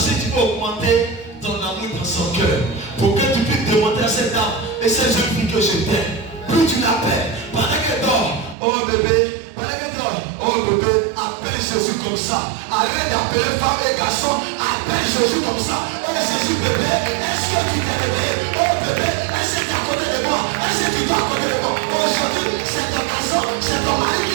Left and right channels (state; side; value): drops out; left; at 8.6 s